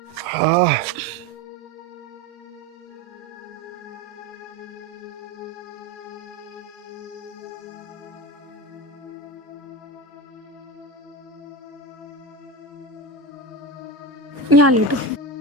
हाँ। यहाँ लेटो।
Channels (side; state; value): both; normal; correlation 0.22